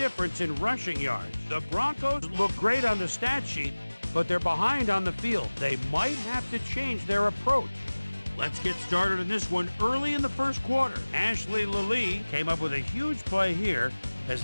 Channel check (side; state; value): both; inverted; correlation -1.00